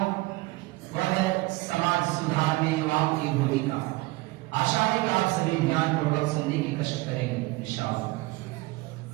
वह है समाज सुधार में युवाओं की भूमिका। आशा है कि आप सभी ध्यानपूर्वक सुनने की कष्ट करेंगे इंशाअल्लाह।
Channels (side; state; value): left; quieter; 21.8 dB